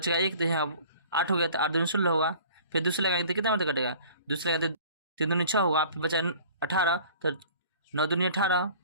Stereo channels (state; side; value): inverted; both; correlation -0.46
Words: 1, तो यहाँ 8 हो गया, तो 8 दूनी 16 होगा। फिर दूसरे लगाएंगे तो कितना मिनट कटेगा, दूसरे लगाएंगे तो 3 दूनी 6 होगा। फिर बचा 18, तो 9 दूनी 18।